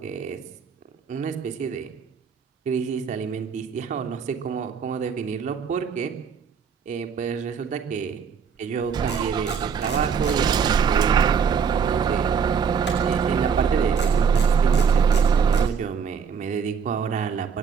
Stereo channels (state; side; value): quieter; left; 6.5 dB